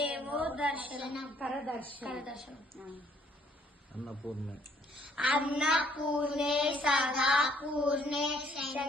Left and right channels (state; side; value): normal; both; correlation 0.63